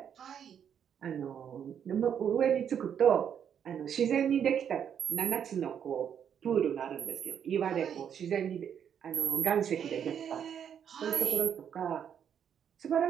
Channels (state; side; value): quieter; left; 8.4 dB